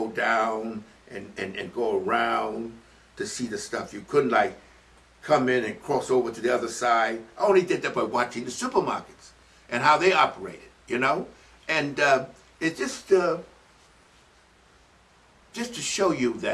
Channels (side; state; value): both; identical; correlation 1.00